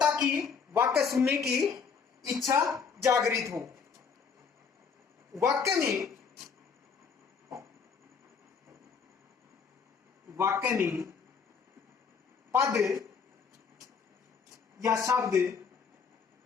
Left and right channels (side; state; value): right; quieter; 5.9 dB